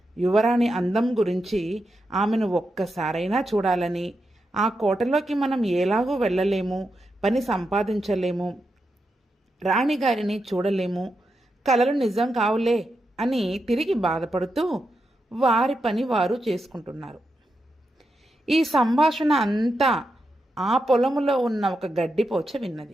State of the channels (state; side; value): normal; both; correlation 0.86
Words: యువరాణి అందం గురించి ఆమెను ఒక్కసారైనా చూడాలని, ఆ కోటలోకి మనం ఎలాగూ వెళ్ళలేము, పని సంపాదించలేము, రాణిగారిని చూడలేము, కలలు నిజం కావులే అని తిరిగి బాధపడుతూ వారి పని వారు చేసుకుంటున్నారు. ఈ సంభాషణ అంతా ఆ పొలములో ఉన్న ఒక గడ్డిపోచ